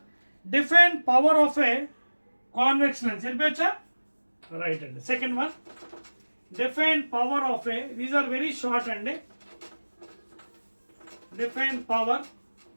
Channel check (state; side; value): inverted; both; correlation -1.00